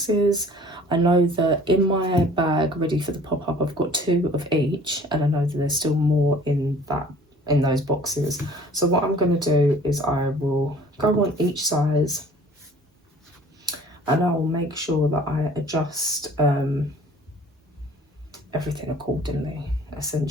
I know that in my bag ready for the pop-up I've got 2 of each, and I know that there's still more in those boxes. So what I'm going to do is I will go on each size, and I will make sure that I adjust everything accordingly,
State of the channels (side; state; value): both; normal; correlation 0.50